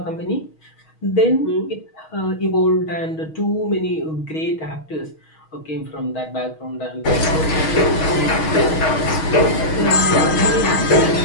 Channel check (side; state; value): right; late; 6.3 ms